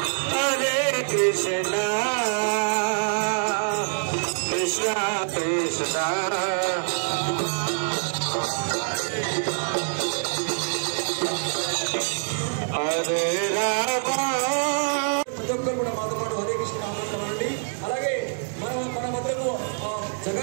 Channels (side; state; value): left; silent; digital silence